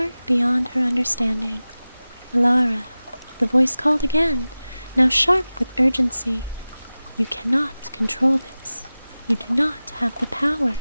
beyond her understanding. Elara, the voice called again, now sharp with urgency. You cannot control this. You do not have the power.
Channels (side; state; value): both; inverted; correlation -0.97